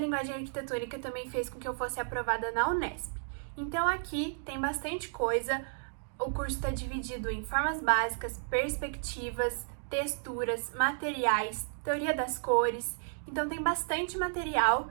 arquitetônica também fez com que eu fosse aprovada na Unesp. Então aqui tem bastante coisa, o curso está dividido em formas básicas, perspectivas, texturas, materiais, teoria das cores, então tem bastante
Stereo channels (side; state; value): left; silent; digital silence